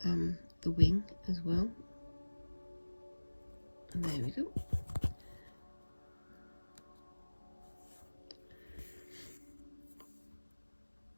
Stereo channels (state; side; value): inverted; both; correlation -1.00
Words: wing as well. And there we go.